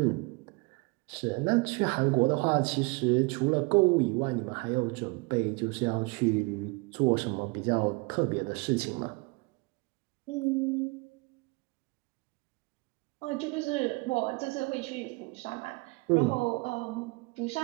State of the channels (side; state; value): left; quieter; 27.9 dB